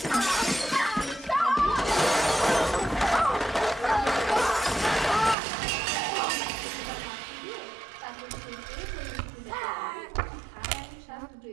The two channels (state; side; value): drops out; left; at 5.4 s